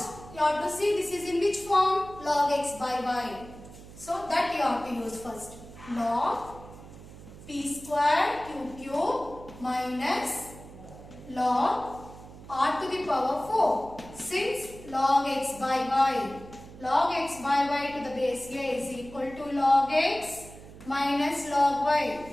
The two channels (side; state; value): right; noise; hum, 17 dB below the sound